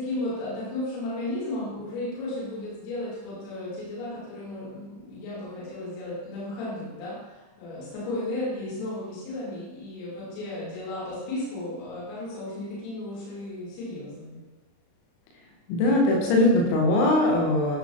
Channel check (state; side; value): late; right; 35 ms